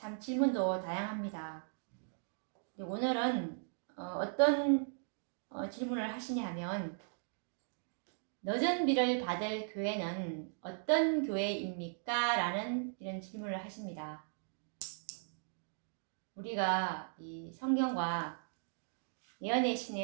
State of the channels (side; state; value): left; silent; digital silence